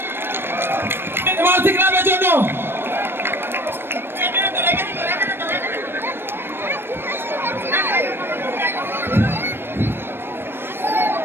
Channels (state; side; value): late; left; 0.10 ms